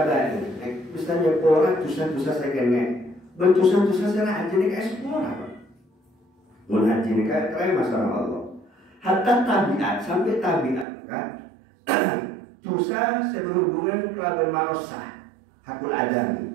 misalnya orang dosa-dosa saya kena, berdosa-dosa saya haji ini kayak semua apa? Mau haji ini kayak terima sama Allah. Hatta tabiat sampai tabiat kan, dosa saya berhubungan kelaban manusia, hakul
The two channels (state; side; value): drops out; left; at 10.9 s